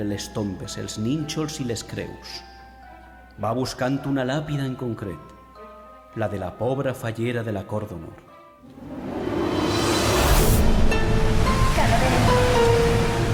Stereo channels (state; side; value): identical; both; correlation 1.00